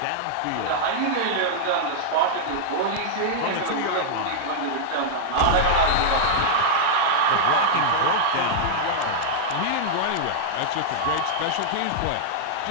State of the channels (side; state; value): both; different; correlation -0.02